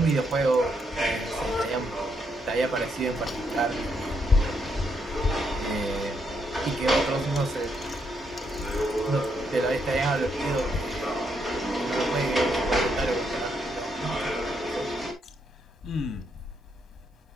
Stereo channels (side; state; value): both; normal; correlation 0.77